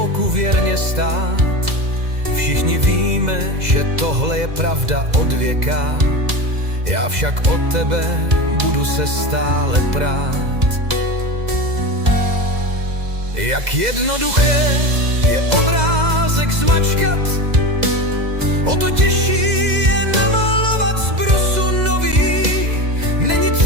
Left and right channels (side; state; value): left; late; 2.0 ms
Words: věrně stát. Všichni víme, že tohle je pravda od věka, já však od tebe budu se stále prát. Jak jednoduché je obrázek zmačkat, o to těžší je namalovat z brusu nový. Není